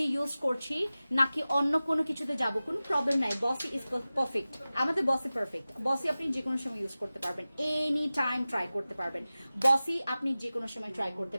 ইউজ করছি নাকি অন্য কোনো কিছুতে যাব, কোনো প্রবলেম নাই। বসি ইজ পারফেক্ট, আমাদের বসি পারফেক্ট। বসি আপনি যে কোনো সময় ইউজ করতে পারবেন, এনি টাইম ট্রাই করতে পারবেন। বসি আপনি যে কোনো সময় ট্রাই করতে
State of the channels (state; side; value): inverted; both; correlation -0.96